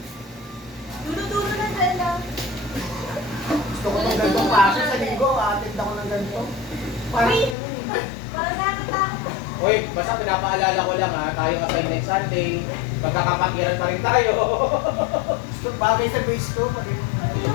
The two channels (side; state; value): right; drops out; at 7.6 s